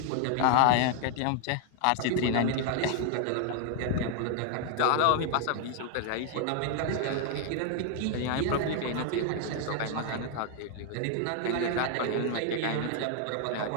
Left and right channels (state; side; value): different; both; correlation 0.00